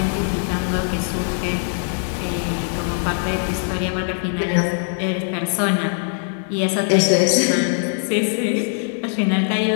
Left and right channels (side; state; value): right; silent; digital silence